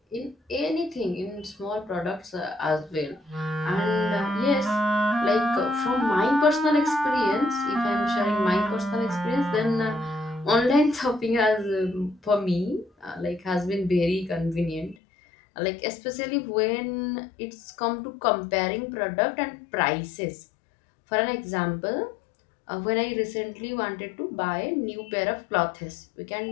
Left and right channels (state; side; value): drops out; right; at 15.0 s